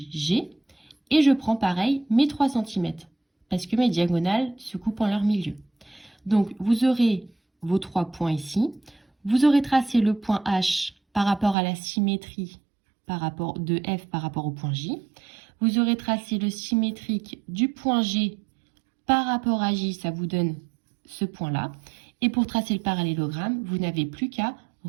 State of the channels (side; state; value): left; drops out; at 11.6 s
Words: et je prends pareil mes 3 cm parce que mes diagonales se coupent en leur milieu. Donc, vous aurez vos 3 points ici. Vous aurez tracé le point H par rapport à la symétrie de F par rapport au point J. Vous aurez tracé le symétrique du point G par rapport à J, ça vous donne ce point-là. Et pour tracer le parallélogramme, vous n'avez plus qu'à